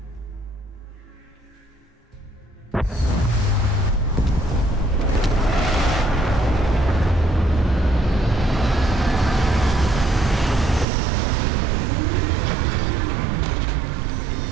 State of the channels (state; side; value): drops out; left; at 10.9 s